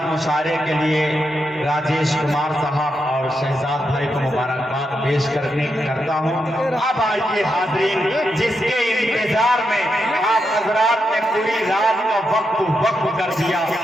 मुशारे के लिए राजेश कुमार साहब और शहजाद भाई को मुबारकबाद पेश करता हूँ। अब आइए हाज़रीन, जिसके इंतजार में आप हजरात ने पूरी रात का वक्त कर दिया,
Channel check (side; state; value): both; normal; correlation 0.84